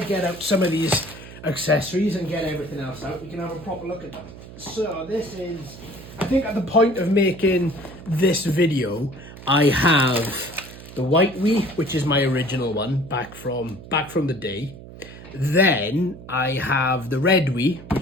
out some of these accessories and get everything else out, we can have a proper look at them. So this is, I think at the point of making this video, I have the white Wii, which is my original one, back from the day. Then I have the red Wii,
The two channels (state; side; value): noise; right; hum, 16 dB below the sound